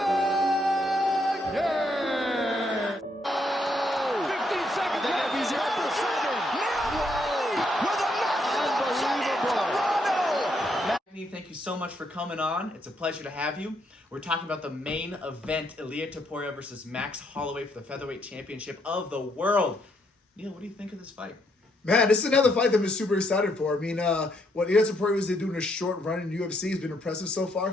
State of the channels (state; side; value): normal; both; correlation 0.74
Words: 15 seconds left. He's here for 7. Neil Magny with a massive upset in Toronto. Magny, thank you so much for coming on. It's a pleasure to have you. We're talking about the main event, Ilia Topuria versus Max Holloway for the featherweight championship of the world. Neil, what do you think of this fight? Man, this is another fight that I'm super excited for. I mean, what Ilia Topuria was doing a short run in UFC has been impressive so far,